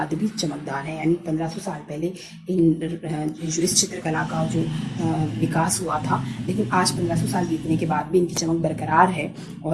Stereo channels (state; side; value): identical; both; correlation 1.00